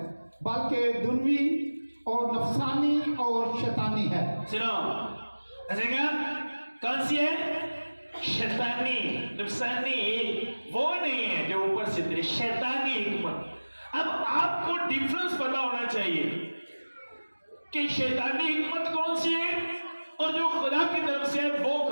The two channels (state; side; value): inverted; both; correlation -1.00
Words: बल्कि दुनवी और नफसानी और शैतानी है। सुनो, ऐसे क्या कौन सी है? शैतानी, नफसानी वो नहीं है जो ऊपर से उतरी, शैतानी हिकमत। अब आपको डिफरेंस पता होना चाहिए कि शैतानी हिकमत कौन सी है और जो खुदा की तरफ से है वो